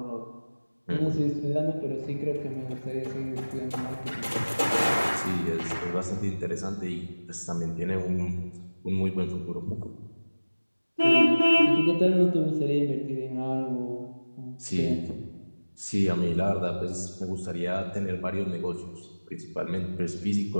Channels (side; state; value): both; inverted; correlation -1.00